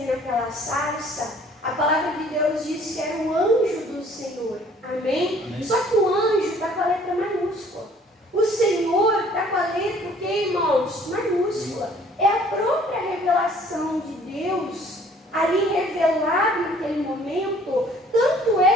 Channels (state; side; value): normal; both; correlation 0.56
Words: naquela sarça. A palavra de Deus diz que era o anjo do Senhor. Amém? Amém. Só que o anjo está com a letra maiúscula. O Senhor está com a letra, o que, irmãos? Maiúscula. É a própria revelação de Deus ali revelado naquele momento. Tanto